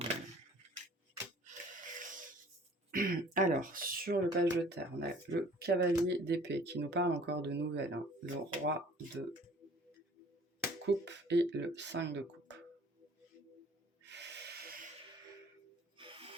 Alors, sur le page de terre, on a le cavalier d'épée qui nous parle encore de nouvelles, hein. Le roi de coupe et le 5 de coupe.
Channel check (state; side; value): normal; both; correlation 0.52